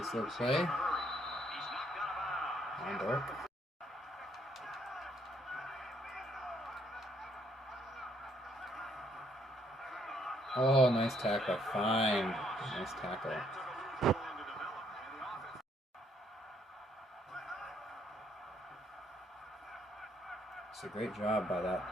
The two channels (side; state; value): both; normal; correlation 0.69